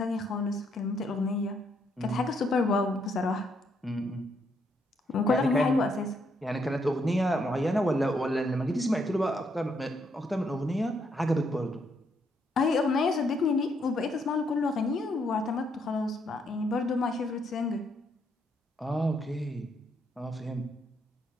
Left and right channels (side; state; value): both; normal; correlation 0.74